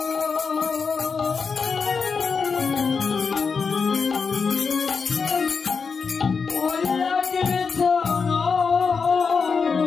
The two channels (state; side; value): quieter; right; 5.4 dB